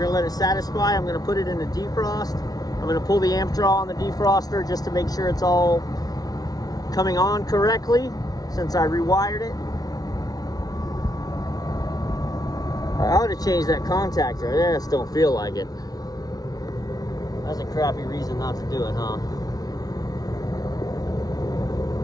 going to let it satisfy. I'm going to put it in a defrost. I'm going to pull the amp draw on the defroster just to make sure it's all coming on correctly since I rewired it. I ought to change that contactor. I just don't feel like it. That's a crappy reason not to do it, huh?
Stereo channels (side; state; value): right; late; 0.18 ms